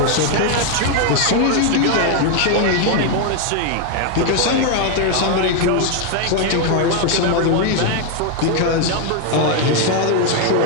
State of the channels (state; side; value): different; both; correlation 0.01